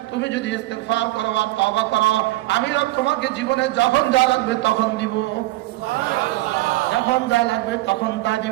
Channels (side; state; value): left; quieter; 18.4 dB